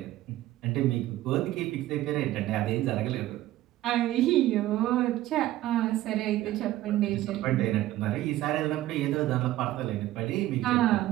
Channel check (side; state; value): left; quieter; 15.0 dB